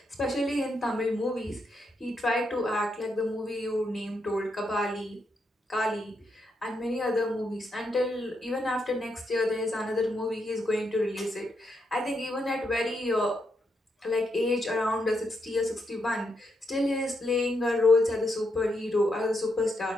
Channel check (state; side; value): normal; both; correlation 0.81